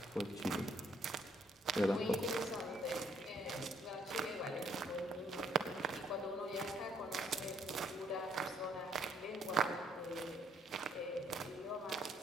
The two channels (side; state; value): both; normal; correlation 0.68